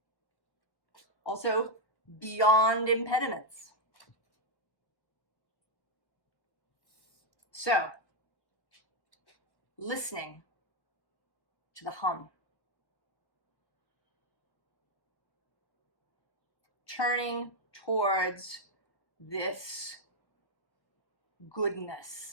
Also, beyond impediments. So, listening to the hum. Turning towards this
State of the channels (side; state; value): right; late; 1.2 ms